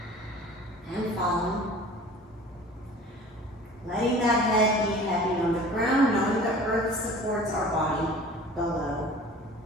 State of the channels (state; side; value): normal; both; correlation 0.44